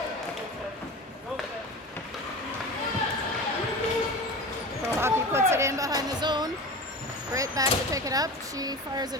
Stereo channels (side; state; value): both; normal; correlation 0.31